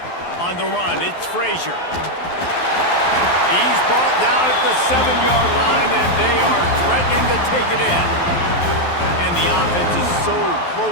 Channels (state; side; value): late; right; 12 ms